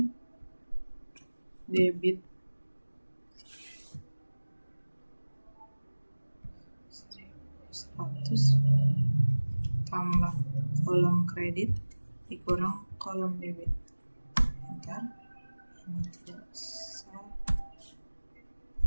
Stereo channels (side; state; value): both; inverted; correlation -1.00